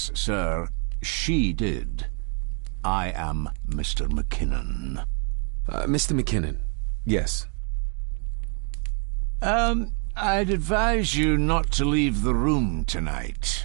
sir. She did. I am Mr. McKinnon. Mr. McKinnon. Yes. I'd advise you not to leave the room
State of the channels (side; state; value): left; quieter; 38.7 dB